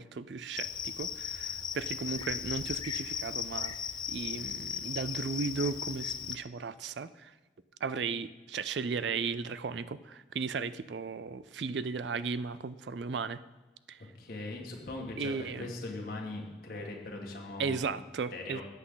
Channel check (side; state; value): both; normal; correlation 0.30